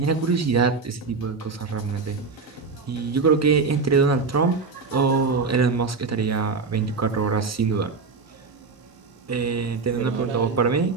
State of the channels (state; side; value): quieter; left; 4.6 dB